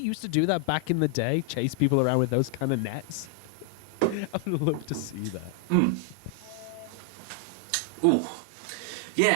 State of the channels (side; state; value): both; different; correlation 0.00